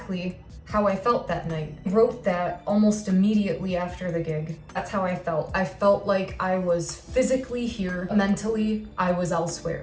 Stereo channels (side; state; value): both; identical; correlation 1.00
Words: how I felt that night. I wrote that almost immediately after the gig. That's how I felt. I felt like I was physically here, mentally I was